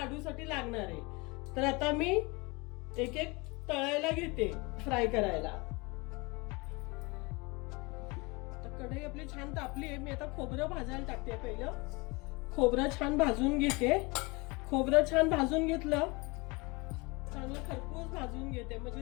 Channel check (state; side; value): quieter; right; 26.2 dB